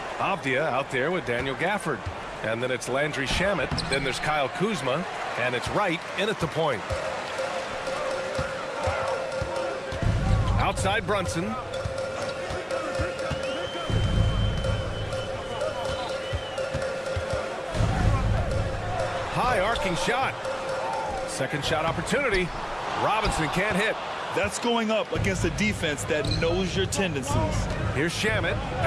Avdia out there with Daniel Gafford. And then it's Landry Shamet. Then there's Kyle Kuzma. And it's Wright in at the point. Outside Brunson. High arcing shot. Second shot opportunity. Robinson can't hit. That's going up against a defense that knows your tendencies. Here's Shamet.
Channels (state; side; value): identical; both; correlation 1.00